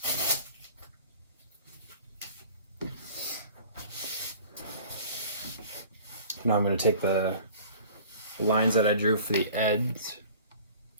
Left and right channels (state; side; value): inverted; both; correlation -0.45